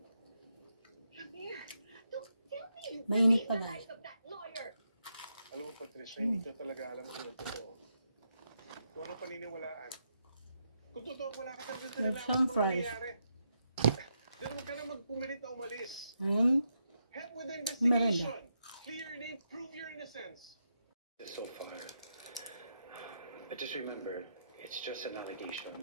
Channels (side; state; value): both; inverted; correlation -0.82